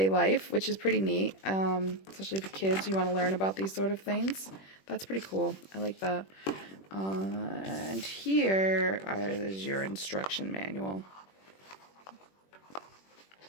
life, which is pretty neat, especially for kids. You want to learn about these sort of things. That's pretty cool. I like that. And here is your instruction manual,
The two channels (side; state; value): right; late; 21 ms